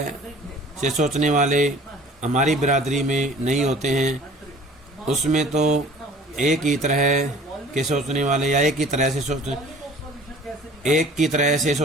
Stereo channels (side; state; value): both; normal; correlation 0.47